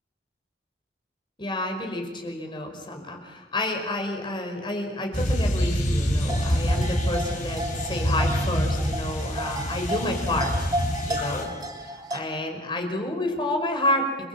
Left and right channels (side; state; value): both; normal; correlation 0.56